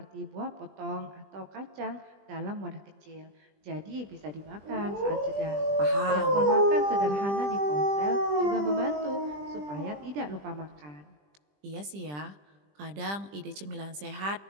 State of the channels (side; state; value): left; late; 20 ms